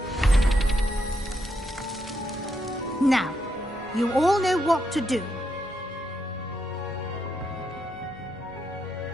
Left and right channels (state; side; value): normal; both; correlation 0.80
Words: Now, you all know what to do.